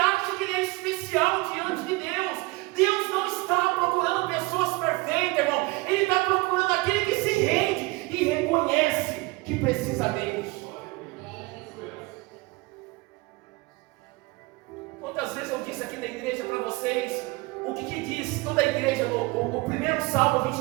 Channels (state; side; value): quieter; left; 23.7 dB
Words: que ele é especial diante de Deus. Deus não está procurando pessoas perfeitas, irmão. Ele está procurando aquele que se rende e reconhece que precisa dele. Quantas vezes eu disse aqui na igreja para vocês o que diz toda a igreja no primeiro Salmo